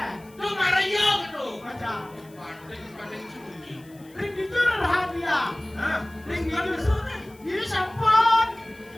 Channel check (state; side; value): noise; left; hiss, 27 dB below the sound